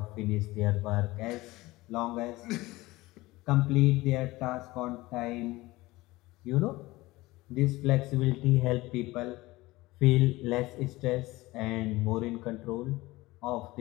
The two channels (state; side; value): quieter; right; 19.8 dB